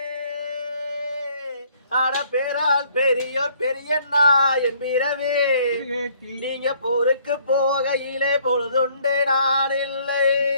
ஆட பேரால் பெரியோர் பெரியண்ணா என்பிரவே நீங்க போருக்கு போகையிலே பொழுதுண்டு நான் இல்லை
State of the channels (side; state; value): both; inverted; correlation -0.62